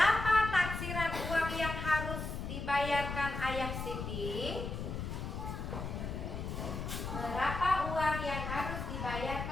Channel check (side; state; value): left; noise; rumble, 5 dB below the sound